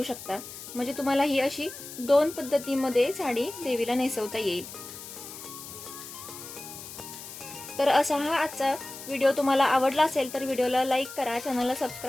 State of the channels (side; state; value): left; noise; hiss, 13 dB below the sound